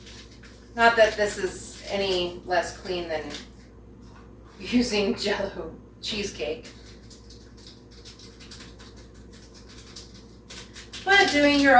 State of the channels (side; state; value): both; identical; correlation 1.00